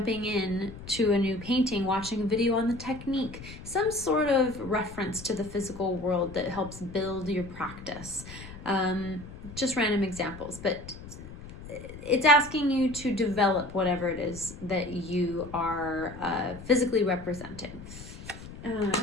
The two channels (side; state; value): left; noise; rumble, 14 dB below the sound